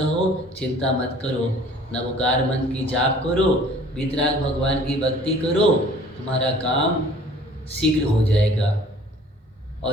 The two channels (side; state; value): both; normal; correlation 0.52